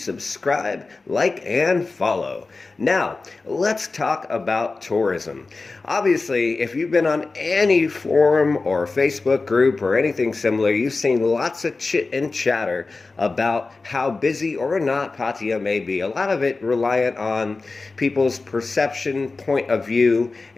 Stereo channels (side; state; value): right; quieter; 3.8 dB